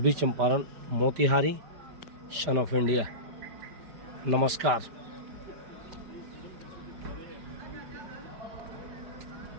Champaran Motihari, son of India. नमस्कार।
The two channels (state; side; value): late; left; 5.0 ms